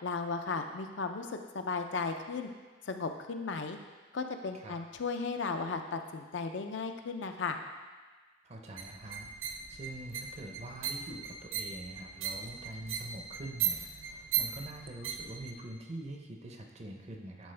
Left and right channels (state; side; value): normal; both; correlation 0.02